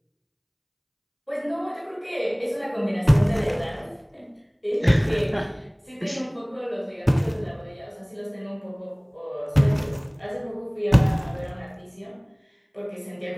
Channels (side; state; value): both; identical; correlation 1.00